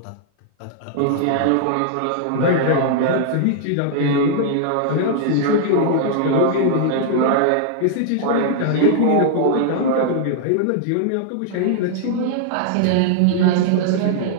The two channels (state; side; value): different; both; correlation -0.01